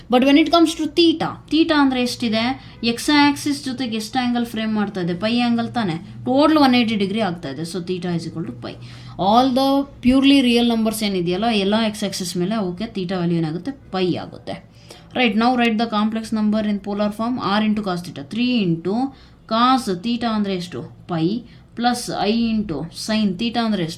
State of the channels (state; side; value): identical; both; correlation 1.00